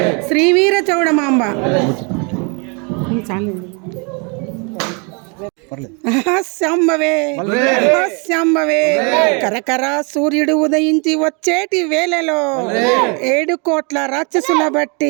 శ్రీవీర చౌడమాంబ. శాంబవే శాంబవే కరకర సూర్యుడు ఉదయించి వచ్చేటి వేళలో 7 కోట్ల రాక్షసుల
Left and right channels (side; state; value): left; quieter; 34.0 dB